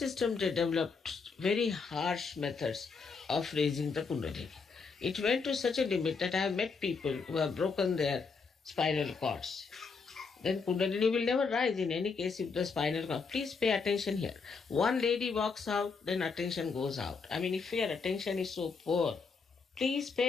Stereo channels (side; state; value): right; quieter; 5.0 dB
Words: they developed very harsh methods of raising the Kundalini. It went to such a limit that I have met people who have broken their spinal cords. Then Kundalini will never rise in any case if the spinal cord. Please pay attention here. One lady walks out, then attention goes out. If your attention is so poor, please